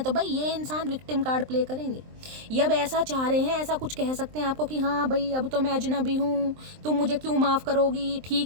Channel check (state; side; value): late; left; 23 ms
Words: तो भाई ये इंसान विक्टिम कार्ड प्ले करेंगे। ये अब ऐसा चाह रहे हैं, ऐसा कुछ कह सकते हैं आपको कि हाँ भाई अब तो मैं अजनबी हूँ, तुम मुझे क्यों माफ़ करोगी,